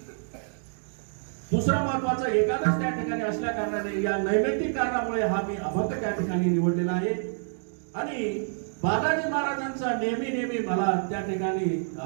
दुसरा महत्वाचा एकादश त्या ठिकाणी असल्या कारणाने या नैमित्तिक कारणामुळे हा मी अभंग त्या ठिकाणी निवडलेला आहे। आणि बालाजी महाराजांचा नेहमी मला त्या ठिकाणी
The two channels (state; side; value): silent; left; digital silence